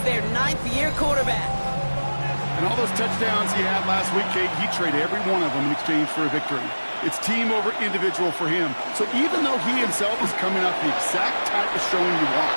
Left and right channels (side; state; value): both; inverted; correlation -1.00